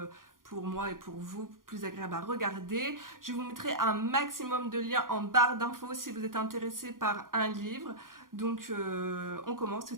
pour moi et pour vous, plus agréable à regarder. Je vous mettrai un maximum de liens en barre d'infos si vous êtes intéressé par un livre. Donc on commence tout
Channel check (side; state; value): left; late; 0.90 ms